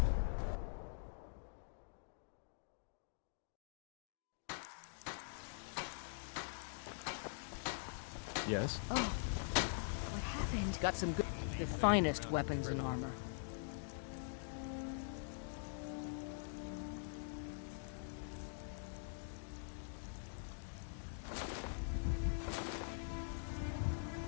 Yes? Oh, what happened? Got some good... The finest weapons and armor.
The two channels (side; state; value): right; silent; digital silence